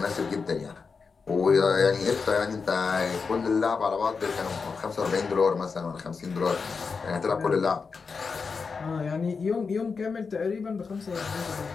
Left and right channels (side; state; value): right; quieter; 5.1 dB